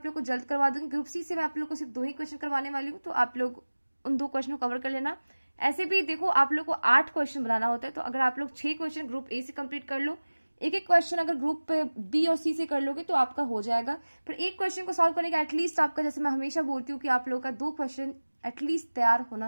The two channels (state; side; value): inverted; both; correlation -1.00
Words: लोग को जल्द करवा दूंगी। ग्रुप सी से मैं आप लोग को सिर्फ 2 ही क्वेश्चन करवाने वाली हूँ, तो आप लोग उन 2 क्वेश्चन को कवर कर लेना। ऐसे भी देखो आप लोग को 8 क्वेश्चन बनाना होता है, तो अगर आप लोग 6 क्वेश्चन ग्रुप ए से कंप्लीट कर लो, एक क्वेश्चन अगर ग्रुप बी और सी से कर लोगे तो आपका हो जाएगा। पर एक क्वेश्चन को सॉल्व करने का एटलीस्ट आपका, जैसे मैं हमेशा बोलती हूँ कि आप लोगों का 2 क्वेश्चन एटलीस्ट तैयार